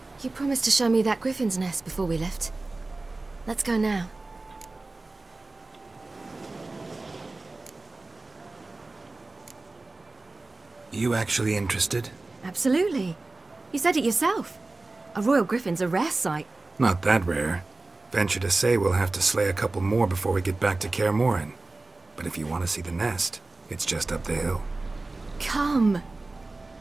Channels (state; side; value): quieter; left; 3.2 dB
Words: You promised to show me that griffin's nest before we left. Let's go now. You actually interested? Absolutely. You said it yourself. A royal griffin's a rare sight. Not that rare. Venture to say we'll have to slay a couple more before we get back to Kaer Morhen. But if you want to see the nest, it's just up the hill. Come.